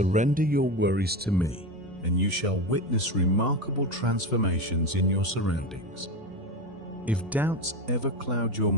your worries to me, and you shall witness remarkable transformations in your surroundings. If doubts ever cloud your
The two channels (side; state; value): both; normal; correlation 0.20